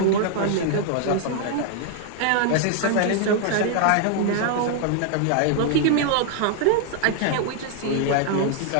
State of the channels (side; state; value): both; different; correlation 0.00